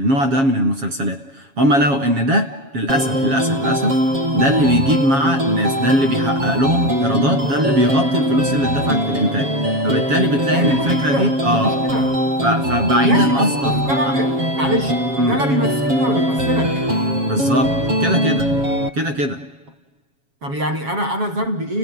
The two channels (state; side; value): late; left; 7.3 ms